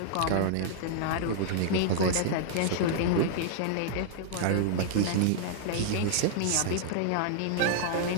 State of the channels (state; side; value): different; both; correlation -0.01